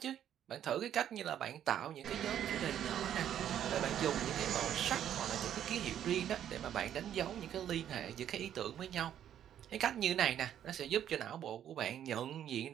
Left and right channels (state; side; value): quieter; left; 10.3 dB